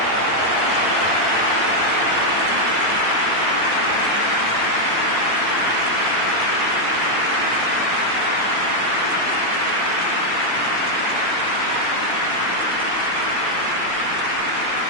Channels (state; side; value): late; left; 8.9 ms